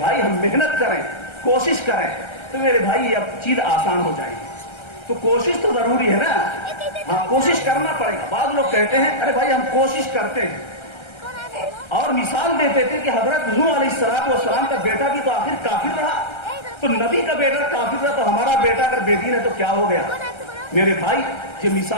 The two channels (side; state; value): right; late; 1.3 ms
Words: ہم محنت کریں, کوشش کریں, تو میرے بھائی اب چیز آسان ہو جائے گی. تو کوشش تو ضروری ہے نا, ہاں کوشش کرنا پڑے گا. بعض لوگ کہتے ہیں ارے بھائی ہم کوشش کرتے ہیں, اور مثال دیتے تھے کہ حضرت نوح علیہ السلام کا بیٹا بھی تو آخر کافر رہا, تو نبی کا بیٹا کافر رہا, تو ہمارا بیٹا اگر بے دین ہے تو کیا ہو گیا؟ میرے بھائی یہ